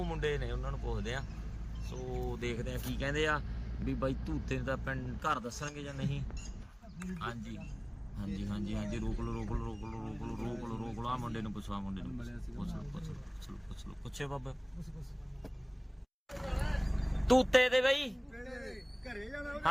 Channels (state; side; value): identical; both; correlation 1.00